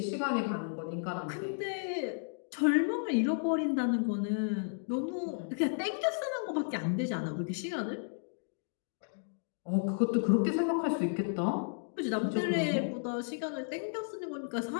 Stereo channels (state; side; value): silent; right; digital silence